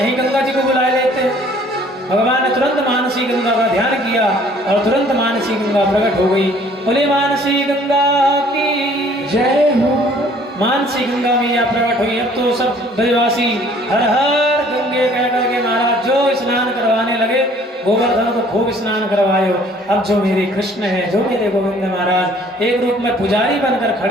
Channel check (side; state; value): both; normal; correlation 0.56